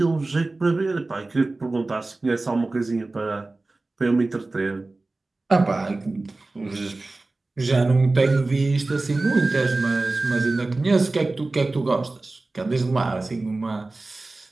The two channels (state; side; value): quieter; left; 3.2 dB